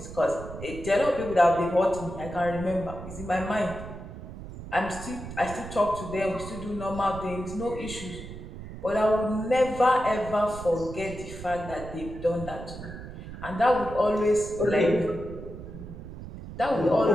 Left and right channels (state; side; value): noise; right; rumble, 11 dB below the sound